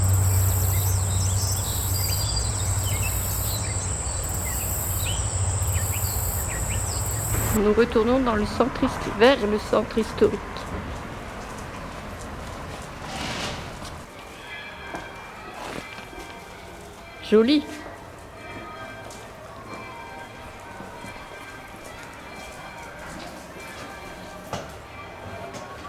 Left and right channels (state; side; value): identical; both; correlation 1.00